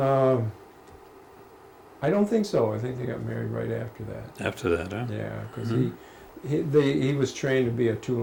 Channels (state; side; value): identical; both; correlation 1.00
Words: I don't think so. I think they got married right after that. After that, huh? Yeah, because he was trained to be a